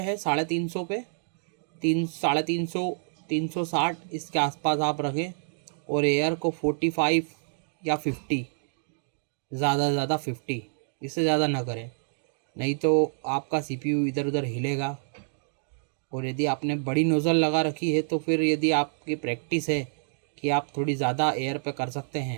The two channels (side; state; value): left; silent; digital silence